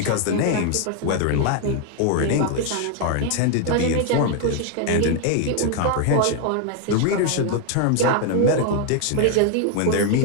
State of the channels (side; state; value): both; different; correlation 0.00